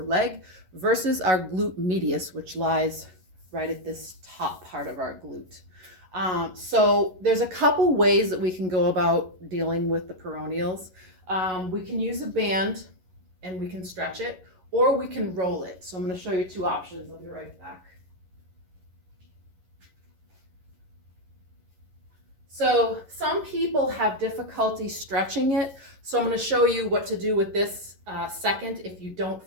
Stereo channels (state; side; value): late; left; 11 ms